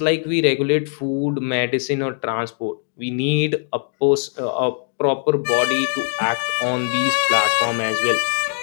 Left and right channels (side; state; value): right; silent; 55 dB below the other